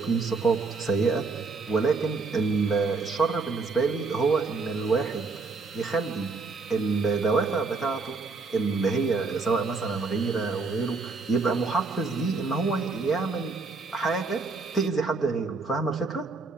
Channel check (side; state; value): left; quieter; 4.1 dB